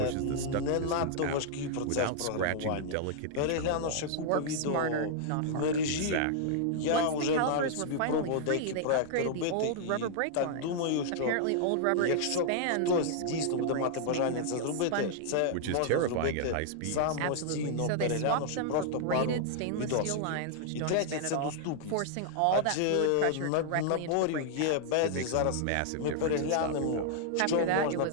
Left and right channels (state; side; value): different; both; correlation -0.01